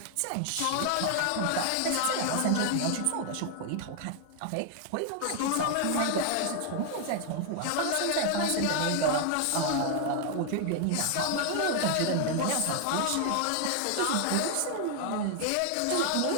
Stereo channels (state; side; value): different; both; correlation 0.00